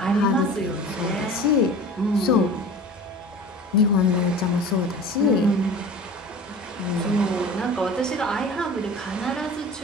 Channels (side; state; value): both; normal; correlation 0.39